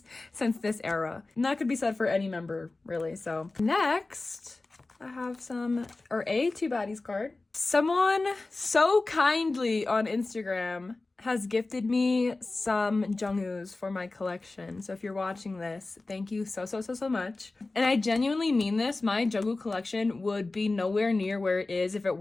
this era. And that could be said for any member, really. So next, I have a Two Baddies card. Someone so kindly on Instagram has gifted me some Jungkook's for my collection. So if you're watching this, thank you so much. And I genuinely mean this. My Jungkook collection would be nowhere near where it is if it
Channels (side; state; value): right; quieter; 3.3 dB